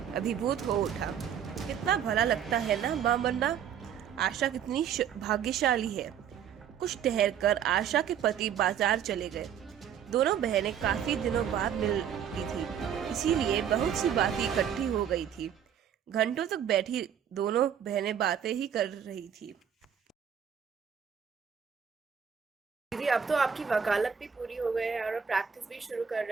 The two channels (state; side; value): quieter; left; 8.5 dB